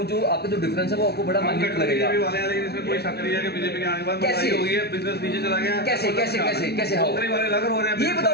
जो आपका जो डिफरेंस है वो आपको बड़ा माइन्यूट लगेगा। बीजेपी वाले हैं, लेकिन इसमें कोई शक नहीं है कि बीजेपी के आने के बाद महंगाई हो गई है, बिजनेस नीचे चला गया है। कैसे कैसे कैसे कैसे हो? नौकरी वाले लग रहे हैं, ये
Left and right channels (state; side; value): late; right; 0.47 ms